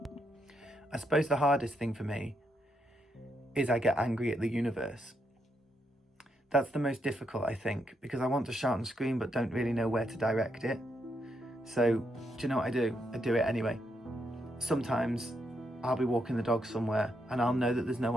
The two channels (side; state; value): both; normal; correlation 0.79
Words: I suppose the hardest thing for me is I get angry at the universe. That's the most difficult, I think, because I want to shout and scream but don't really know where to direct it. So, do you know what I do? I do it anyway. Sometimes I'll be walking the dog somewhere and I'll know that there's no